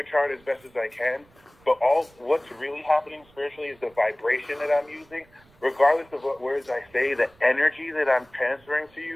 chart as best as I can, but what's really happening spiritually is the vibration that I'm using. Regardless of what words I say, the energy that I'm transferring to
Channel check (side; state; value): right; noise; rumble, 30 dB below the sound